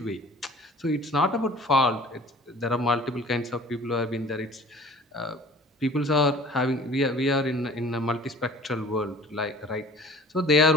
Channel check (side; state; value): both; normal; correlation 0.47